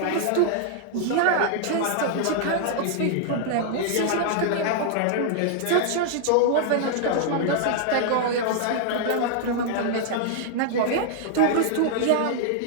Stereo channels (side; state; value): both; different; correlation -0.01